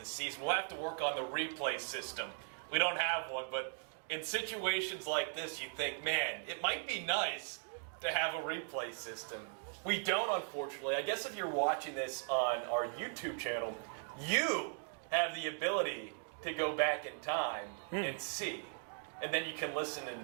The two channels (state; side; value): silent; left; 52 dB below the other